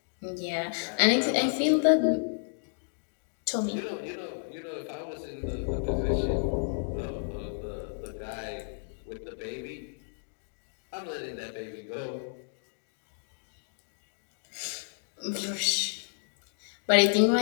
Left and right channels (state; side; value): silent; right; digital silence